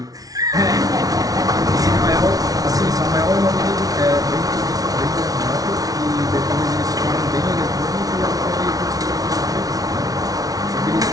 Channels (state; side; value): late; left; 0.18 ms